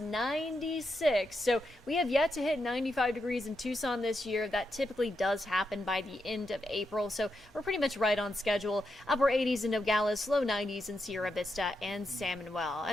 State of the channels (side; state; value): both; normal; correlation 0.84